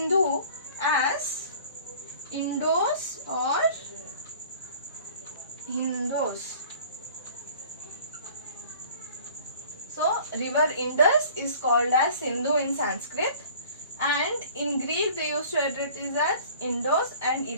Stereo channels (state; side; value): inverted; both; correlation -0.48